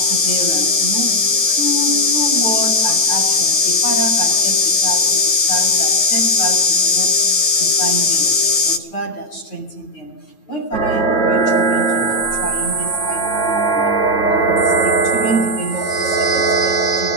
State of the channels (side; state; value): right; late; 9.2 ms